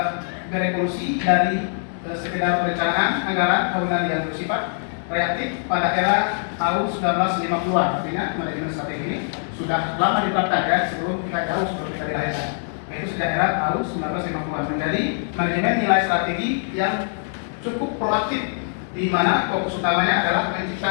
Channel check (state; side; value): silent; right; digital silence